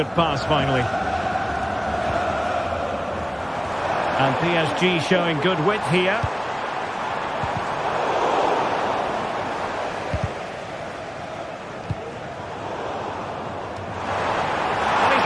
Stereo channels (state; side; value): identical; both; correlation 1.00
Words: pass, finally. And PSG showing good width here. And he's